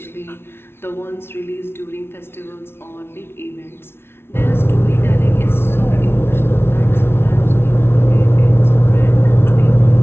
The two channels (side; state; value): right; late; 0.12 ms